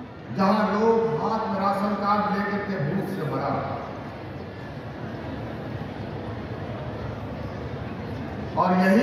जहां लोग हाथ में राशन कार्ड लेकर के भूख से मरा। और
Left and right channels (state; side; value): identical; both; correlation 1.00